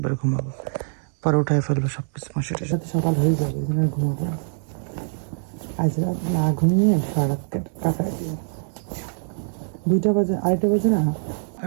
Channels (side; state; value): left; silent; digital silence